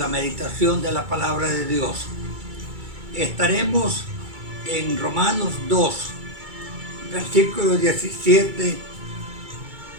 meditación de la palabra de Dios. Estaremos en Romanos 2, versículos 17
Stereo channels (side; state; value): left; late; 2.3 ms